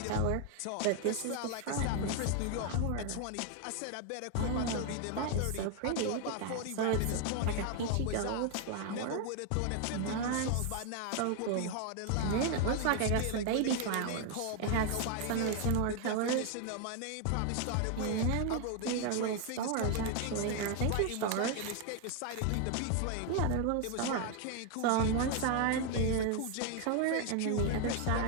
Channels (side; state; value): both; different; correlation 0.01